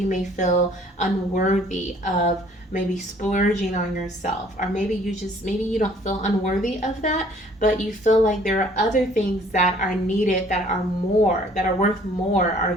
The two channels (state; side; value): normal; both; correlation 0.57